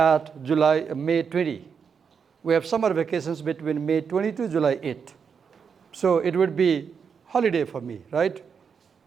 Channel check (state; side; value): quieter; left; 6.4 dB